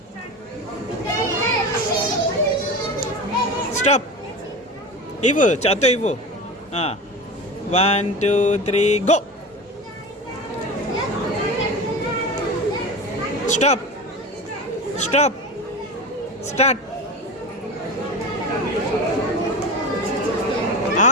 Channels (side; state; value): both; normal; correlation 0.28